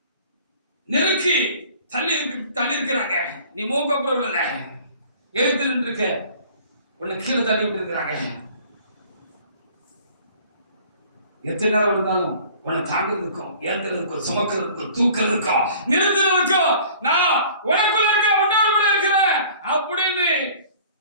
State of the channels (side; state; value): both; inverted; correlation -0.49